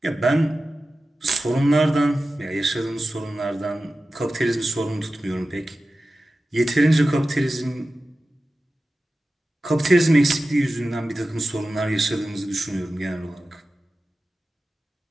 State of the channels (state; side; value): normal; both; correlation 0.94